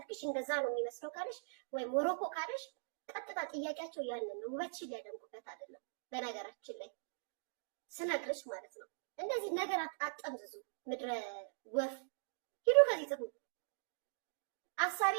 እንደዛ ነው የሚመስለው ካለሽ ወይም ሞሮኮ ካለሽ ቀጥታ ጥያቄያቸው ያንን ነው። ውበትሽን ሊያደንቁበት አይደለም። በነገራችን ላይ ስነግርሽ ማለት ነው እንደዚህ ነገር አጠምዝዙ። ምድረ ወፍ ሂዱ ከዚህ ጥሩ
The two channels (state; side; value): silent; left; digital silence